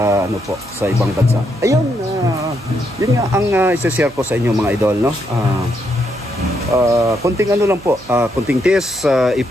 ano po sa ibang bansa. Ayun, yun nga ang i-share ko sa inyo mga idol, no? Konting ano lang po, konting test,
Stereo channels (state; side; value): noise; right; hum, 23 dB below the sound